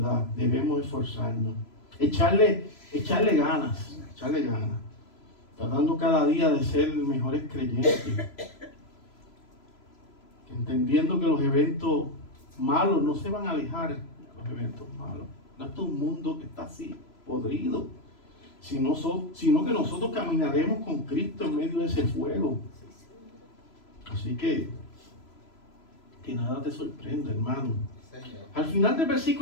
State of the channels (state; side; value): late; right; 3.0 ms